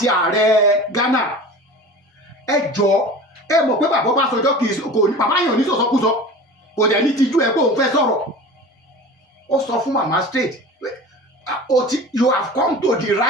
ààrẹ Ghana ẹ jọ ẹ mọ̀ pé bàbá Ọbásanjọ́ kò ní bàbá yàn ní sọ̀sọ́kúsọ kò dẹ̀ ní tijú ẹ pé òun fẹ́ sọ̀rọ̀ ó sọ fún màmá straight you have come to the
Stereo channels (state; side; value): normal; both; correlation 0.37